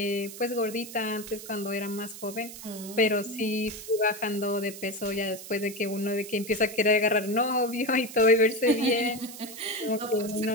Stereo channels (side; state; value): right; noise; hiss, 13 dB below the sound